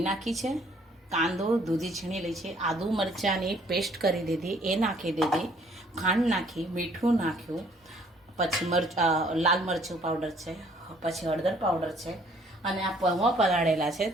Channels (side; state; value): both; normal; correlation 0.61